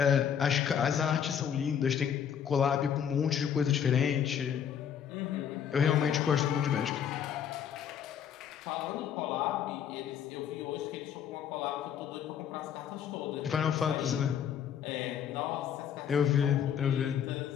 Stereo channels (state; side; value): quieter; right; 8.6 dB